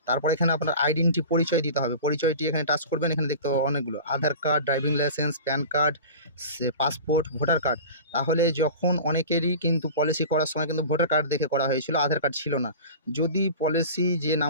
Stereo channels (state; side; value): inverted; both; correlation -0.36